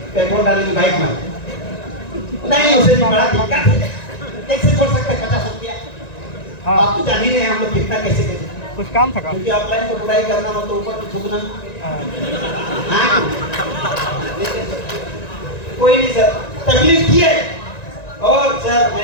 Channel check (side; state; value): right; late; 1.9 ms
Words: पेट्रोल डालने की बाइक में। नहीं उसे बड़ा दिक्कत है, कैसे छोड़ सकते 50 रुपया? आप तो जान ही नहीं हम लोग कितना कैसे कैसे कुछ काम था क्योंकि अपलाइन को बुराई करना हो तो ऊपर थूकना। कोई नहीं सर, तकलीफ की है और सर